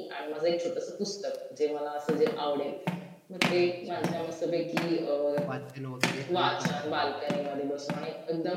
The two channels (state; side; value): identical; both; correlation 1.00